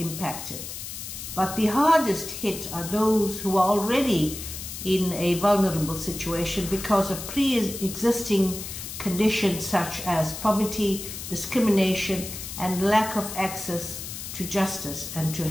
but the hardest hit are those who are already in a vulnerable situation because of pre-existing conditions such as poverty, discrimination, and lack of access to justice and to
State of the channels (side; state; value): left; noise; hiss, 9 dB below the sound